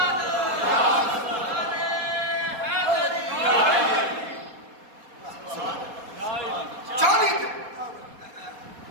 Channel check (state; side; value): late; left; 4.2 ms